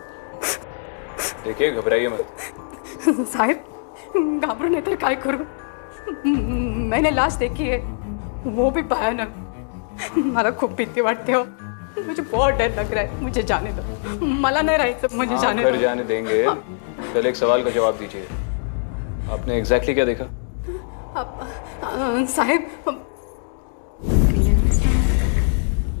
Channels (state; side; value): silent; right; digital silence